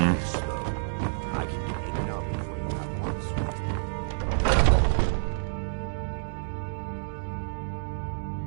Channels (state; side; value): silent; left; 59 dB below the other